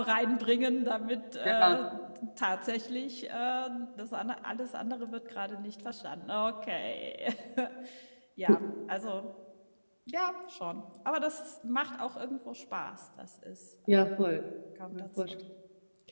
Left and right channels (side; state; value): both; inverted; correlation -1.00